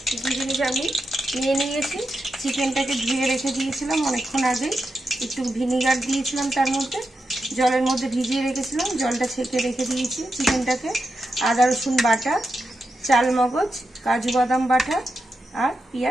কী কী জিনিস আমি নিয়ে নিয়েছি। চিকেনটাকে ধুয়ে রেখে দিয়েছিলাম অনেকক্ষণ আগে, একটু ভিনিগার দিয়েছিলাম, তার মধ্যে জলের মধ্যে ভিজিয়ে রেখেছিলাম, জলটা ছেঁকে রেখে দিয়েছি চিকেনটাকে। আদা রসুন বাটা, চাল মগজ, কাজু বাদাম বাটা আর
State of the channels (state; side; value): normal; both; correlation 0.87